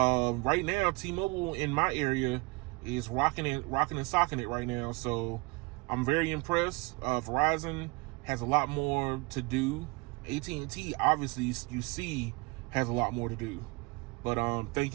now, T-Mobile in my area is rocking and socking it right now. So I'm very impressed. Verizon has a lot more to do. AT&T, obviously, you see, has a lot more to do. But thank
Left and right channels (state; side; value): quieter; left; 27.3 dB